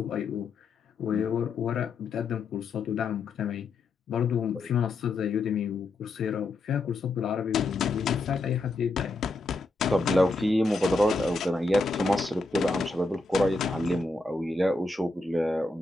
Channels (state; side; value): quieter; right; 3.2 dB